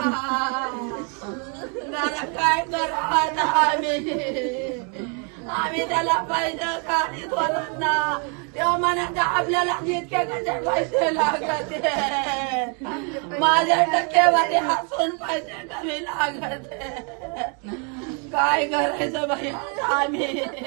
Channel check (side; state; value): left; quieter; 37.7 dB